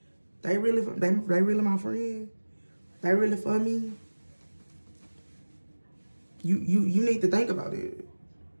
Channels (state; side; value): inverted; both; correlation -1.00